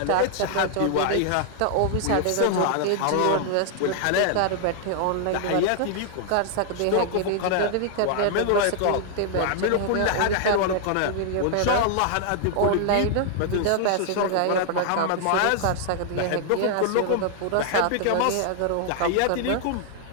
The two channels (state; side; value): different; both; correlation 0.00